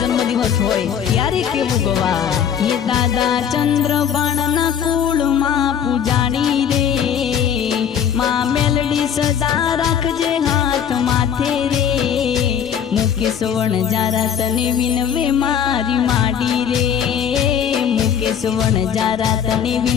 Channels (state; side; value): quieter; right; 8.4 dB